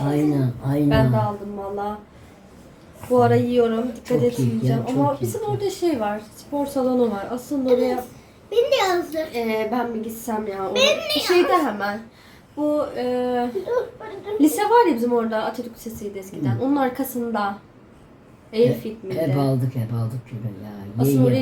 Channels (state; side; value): identical; both; correlation 1.00